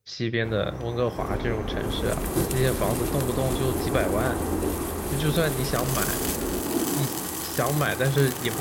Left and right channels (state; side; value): identical; both; correlation 1.00